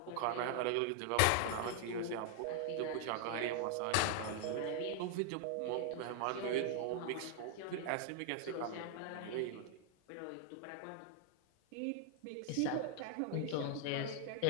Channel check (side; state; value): both; different; correlation 0.00